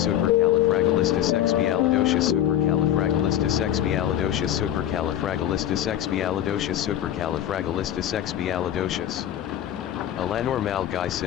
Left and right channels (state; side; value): quieter; right; 11.3 dB